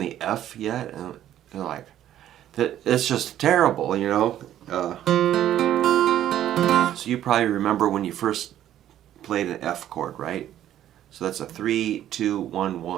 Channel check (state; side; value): quieter; left; 11.8 dB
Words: F yet? And they're like, it's just terrible, you know. So you probably remember when you first played an F chord, right? So that's a 3, 2, 1,